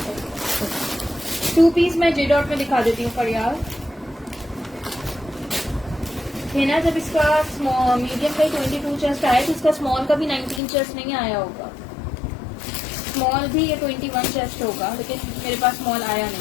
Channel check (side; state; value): right; drops out; at 10.6 s